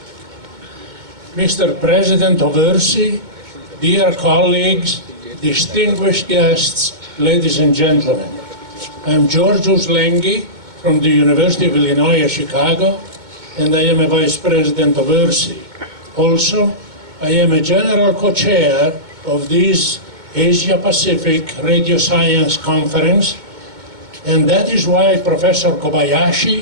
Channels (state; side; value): late; left; 2.2 ms